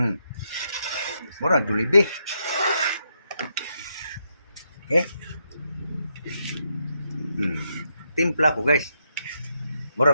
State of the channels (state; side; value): inverted; both; correlation -0.80